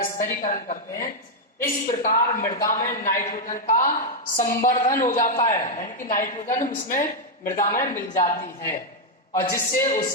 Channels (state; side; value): normal; both; correlation -0.01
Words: स्थिरीकरण करते हैं। इस प्रकार मृदा में नाइट्रोजन का संवर्धन हो जाता है, यानी कि नाइट्रोजन उसमें मृदा में मिल जाती है और जिससे